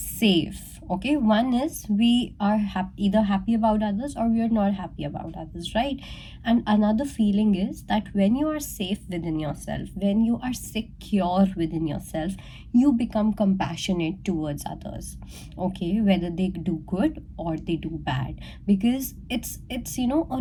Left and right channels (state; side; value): identical; both; correlation 1.00